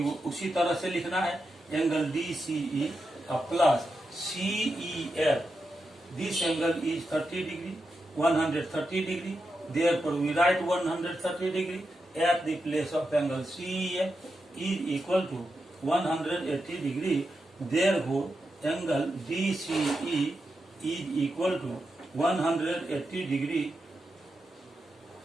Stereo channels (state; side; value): normal; both; correlation 0.87